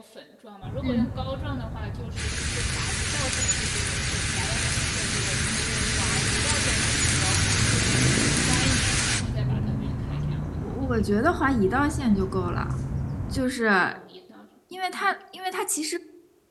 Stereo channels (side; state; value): both; identical; correlation 1.00